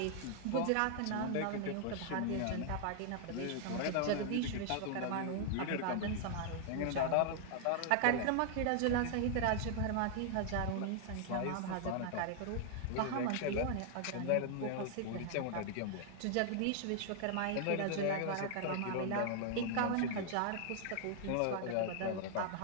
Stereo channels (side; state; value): both; different; correlation 0.00